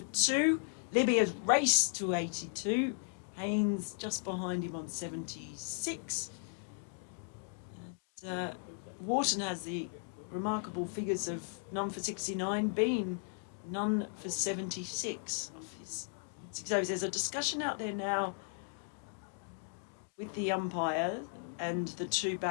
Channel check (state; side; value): silent; right; 54 dB below the other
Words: 2. Libby has raced to 82. Haynes just behind him on 76. And, Wharton has the remarkable figures of none for 69, Bean none for 76 of his 6 overs. There's a discussion out there now with the umpire and the 2